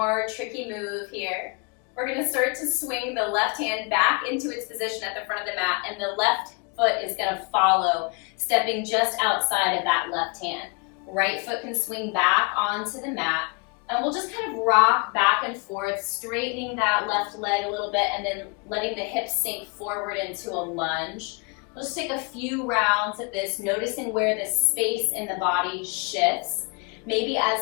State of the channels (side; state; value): right; quieter; 31.8 dB